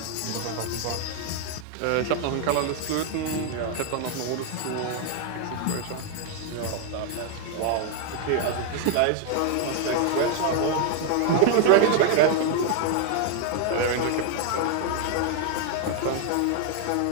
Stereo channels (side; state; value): both; different; correlation 0.00